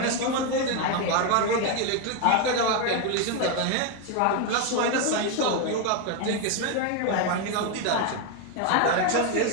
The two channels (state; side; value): different; both; correlation 0.01